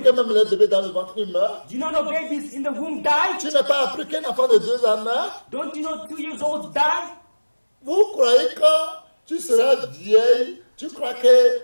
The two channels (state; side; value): inverted; both; correlation -1.00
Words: que même le bébé dans le ventre il meurt? Do you not know babies in the womb die? Tu n'as pas appris qu'un enfant de 2 ans meurt? Don't you know 2 years olds die? Vous croyez que tu seras vieille? Tu crois que